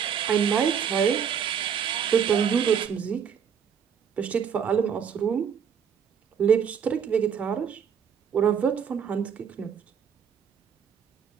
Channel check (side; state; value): left; quieter; 7.5 dB